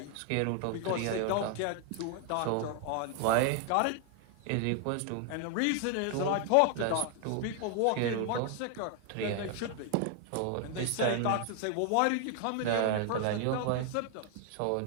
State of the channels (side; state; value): both; different; correlation 0.00